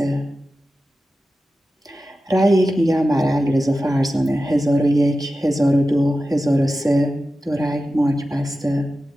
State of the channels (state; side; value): normal; both; correlation 0.93